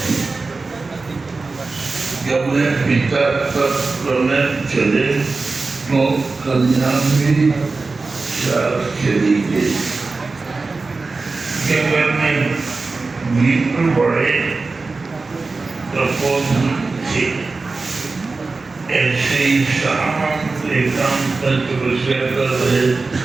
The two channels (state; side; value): quieter; left; 3.9 dB